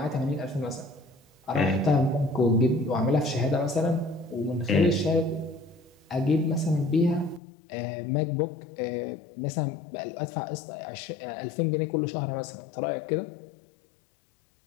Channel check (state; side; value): drops out; right; at 7.4 s